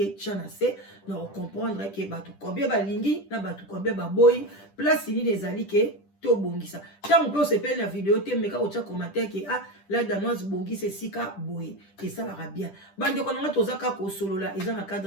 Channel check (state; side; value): late; right; 10 ms